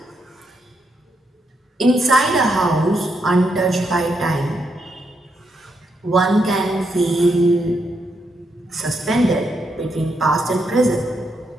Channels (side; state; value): both; normal; correlation 0.79